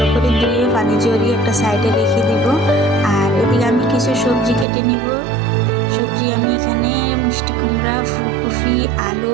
করে ধুয়ে পানি ঝরিয়ে একটা সাইডে রেখে দিব। আর এদিকে আমি কিছু সবজি কেটে নিব। সবজি আমি এখানে মিষ্টি কুমড়া, ফুলকপি, আলু,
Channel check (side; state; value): left; drops out; at 4.7 s